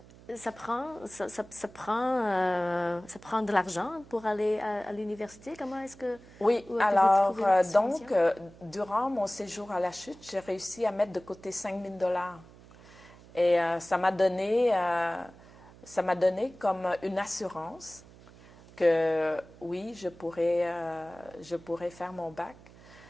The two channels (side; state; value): right; noise; hum, 22 dB below the sound